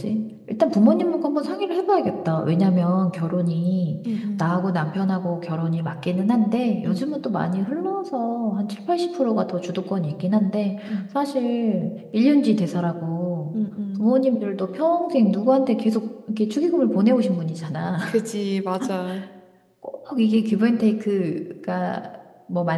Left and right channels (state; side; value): identical; both; correlation 1.00